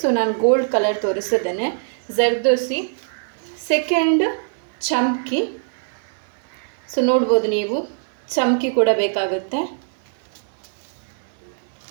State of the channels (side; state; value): left; silent; 59 dB below the other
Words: ನಾನು ಗೋಲ್ಡ್ ಕಲರ್ ತೋರಿಸಿದ್ದೇನೆ. ಜರ್ದೋಸಿ. ಸೆಕೆಂಡ್ ಚಮ್ಕಿ. ಸೊ ನೋಡ್ಬೋದು ನೀವು, ಚಮ್ಕಿ ಕೂಡ ಬೇಕಾಗುತ್ತೆ.